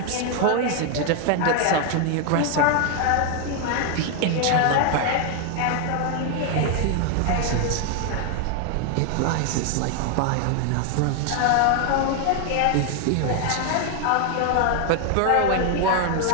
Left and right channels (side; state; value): both; different; correlation 0.00